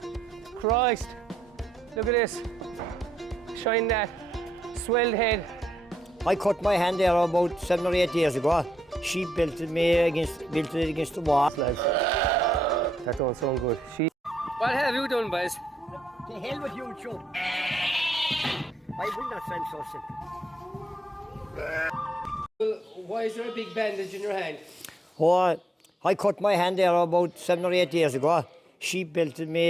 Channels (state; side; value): normal; both; correlation 0.78